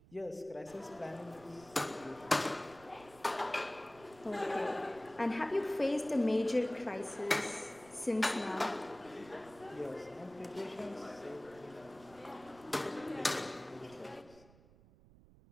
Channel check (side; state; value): right; noise; rumble, 24 dB below the sound